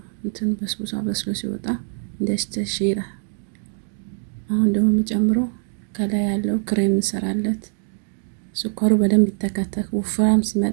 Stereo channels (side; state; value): left; silent; digital silence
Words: እንትን በስቡሳ በስሎ ሲወጣ እንደስተሽራ። አሁን ደግሞ የሚጨምረው ከላይ ያለው ክሬም እንሰራለት። ስኳሩ በደንብ ይተከተክ። ወፍራም